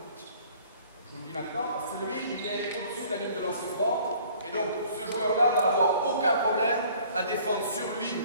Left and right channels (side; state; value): both; inverted; correlation -0.54